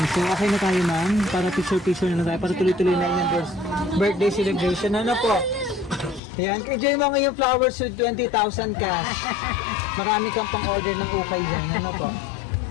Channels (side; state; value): right; drops out; at 6.2 s